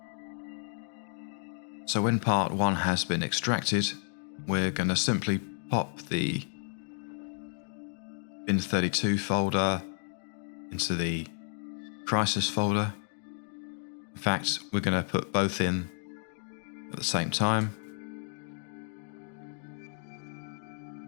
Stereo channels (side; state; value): right; silent; digital silence